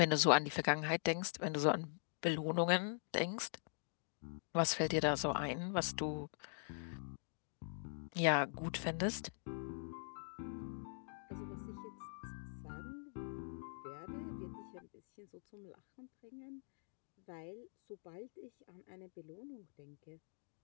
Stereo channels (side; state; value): right; silent; digital silence